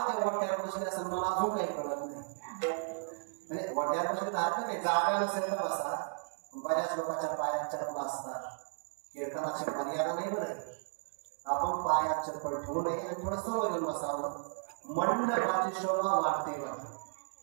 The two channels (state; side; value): silent; left; digital silence